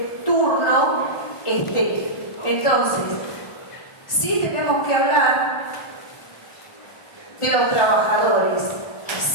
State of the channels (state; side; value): late; right; 1.4 ms